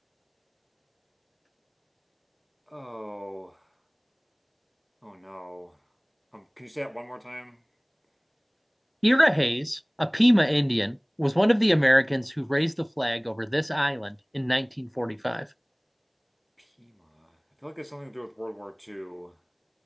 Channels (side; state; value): both; identical; correlation 1.00